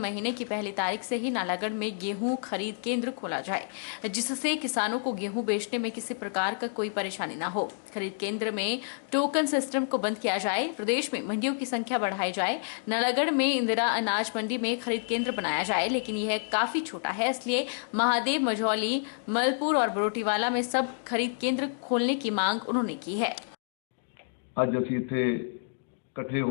की पहली तारीख से ही नालागढ़ में गेहूं खरीद केंद्र खोला जाए, जिससे किसानों को गेहूं बेचने में किसी प्रकार का कोई परेशानी न हो। खरीद केंद्र में टोकन सिस्टम को बंद किया जाए, प्रदेश में मंडियों की संख्या बढ़ाई जाए। नालागढ़ में इंदिरा अनाज मंडी में खरीद केंद्र बनाया जाए, लेकिन यह काफी छोटा है, इसलिए महादेव, मझौली, मलपुर और बरोटीवाला में सब खरीद केंद्र खोलने की मांग उन्होंने की है। ਅੱਜ ਅਸੀਂ ਇੱਥੇ ਇਕੱਠੇ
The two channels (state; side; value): silent; right; digital silence